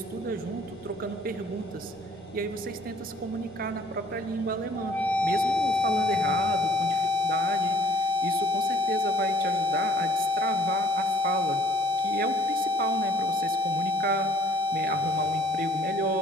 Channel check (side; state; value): both; normal; correlation 0.58